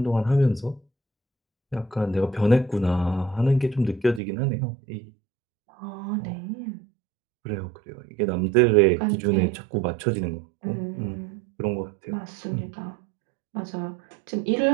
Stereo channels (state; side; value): drops out; left; at 4.2 s